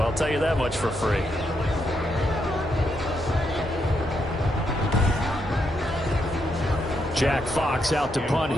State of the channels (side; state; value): both; normal; correlation 0.80